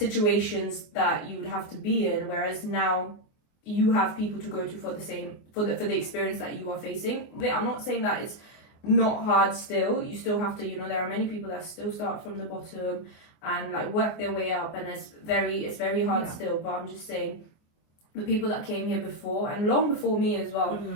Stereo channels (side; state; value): right; late; 24 ms